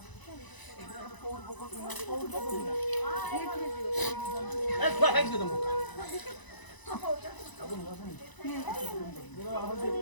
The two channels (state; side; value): late; right; 1.0 ms